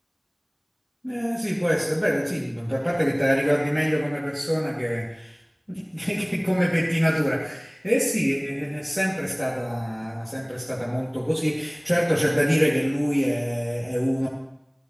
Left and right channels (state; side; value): identical; both; correlation 1.00